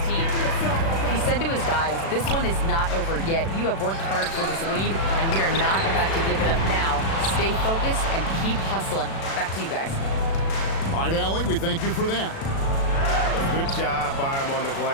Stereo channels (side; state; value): right; late; 36 ms